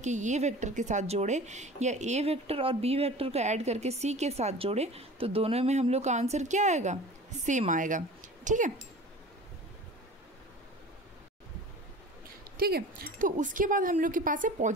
ए वेक्टर के साथ जोड़े या ए वेक्टर और बी वेक्टर को ऐड करके सी के साथ जोड़े, तो दोनों में हम लोग का आंसर क्या आएगा, सेम आएगा। ठीक है। ठीक है। तो उसके बाद हम लोग के पास है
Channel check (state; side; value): normal; both; correlation 0.39